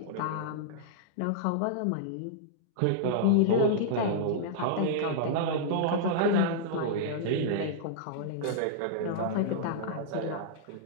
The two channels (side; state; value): both; different; correlation -0.02